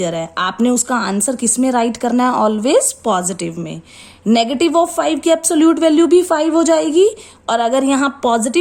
है, आपने उसका आंसर किस में राइट करना है, ऑलवेज पॉजिटिव में. नेगेटिव ऑफ 5 की एब्सोल्यूट वैल्यू भी 5 हो जाएगी, और अगर यहाँ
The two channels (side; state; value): both; identical; correlation 1.00